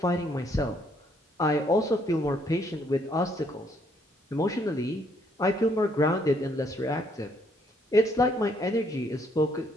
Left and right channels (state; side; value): normal; both; correlation 0.69